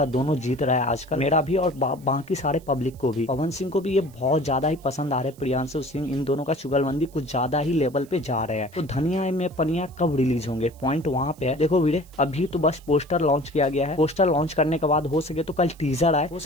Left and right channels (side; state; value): right; noise; hiss, 27 dB below the sound